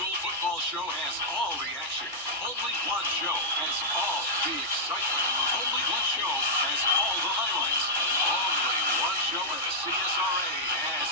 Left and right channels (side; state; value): both; normal; correlation -0.08